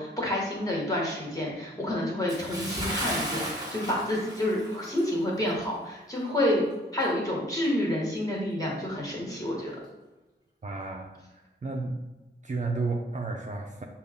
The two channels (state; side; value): normal; both; correlation 0.57